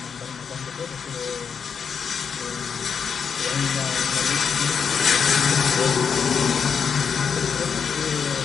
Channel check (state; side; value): quieter; right; 6.7 dB